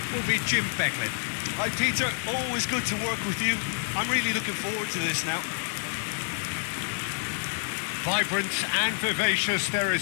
will be Jim Becklin. Hi Peter, always good to work with you. I'm really looking forward to this now. Vibrant and vivacious, there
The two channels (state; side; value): silent; right; digital silence